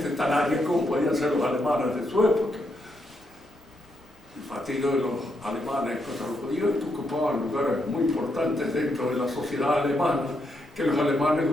tan aria como podían ser los alemanes de su época. El partido de los alemanes contra los judíos ocupaban lugares muy importantes dentro de la sociedad alemana, que los alemanes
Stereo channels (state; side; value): normal; both; correlation 0.79